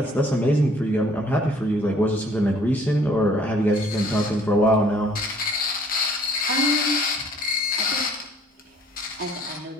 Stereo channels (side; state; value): both; normal; correlation 0.57